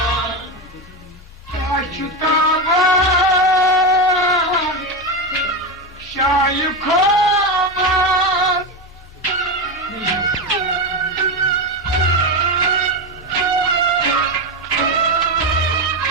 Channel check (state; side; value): normal; both; correlation 0.14